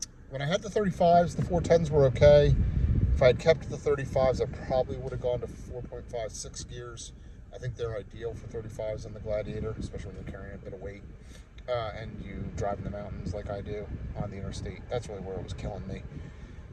When I had the 35s, the 410s were okay. If I had kept the 35s, I probably would have gone to 4.56 gears. I think they're ideal for 35s in the Gladiator, especially when you're carrying a bit of weight and you drive in the mountains like I do on the interstate. That's really where it was killing me.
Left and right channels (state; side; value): identical; both; correlation 1.00